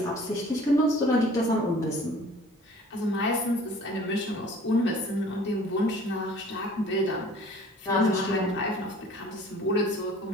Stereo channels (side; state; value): both; normal; correlation 0.49